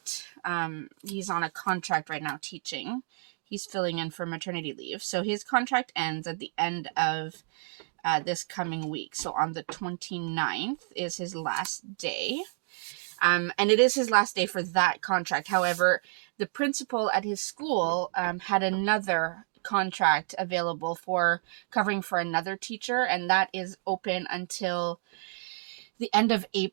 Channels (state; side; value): silent; left; digital silence